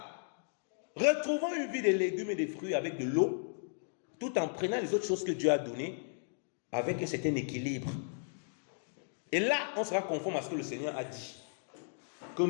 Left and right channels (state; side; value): silent; right; digital silence